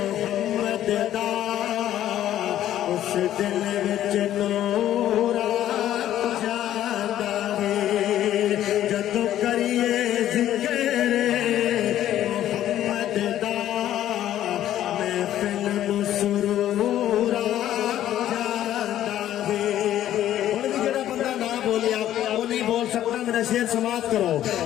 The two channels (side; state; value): right; quieter; 12.1 dB